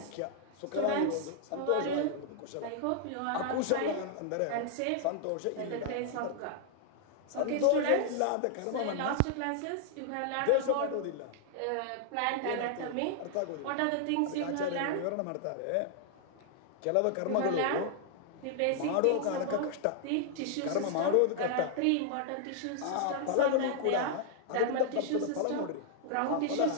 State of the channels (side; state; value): both; different; correlation -0.01